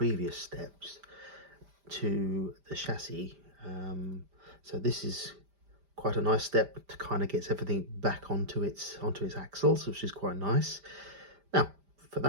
steps to the chassis. So this is quite a nice step to kind of get everything back onto its axles, which is quite nice. Now for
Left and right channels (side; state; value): left; late; 5.0 ms